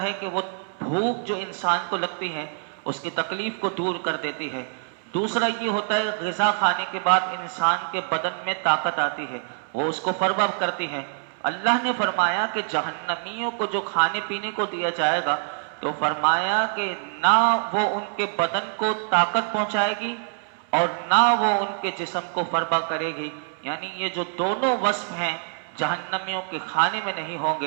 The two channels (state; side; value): silent; left; 62 dB below the other